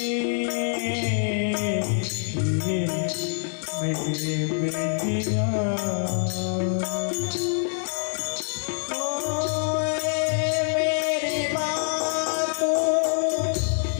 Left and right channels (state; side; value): silent; right; digital silence